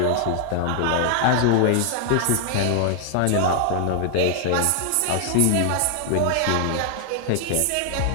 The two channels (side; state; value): both; different; correlation 0.00